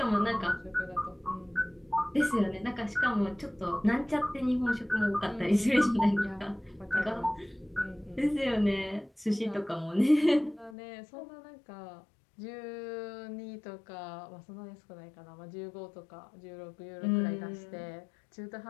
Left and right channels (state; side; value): drops out; right; at 10.8 s